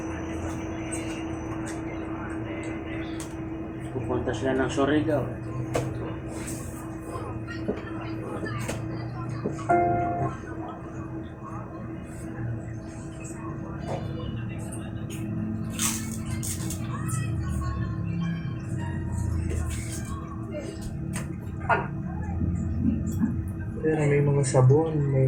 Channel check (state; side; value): identical; both; correlation 1.00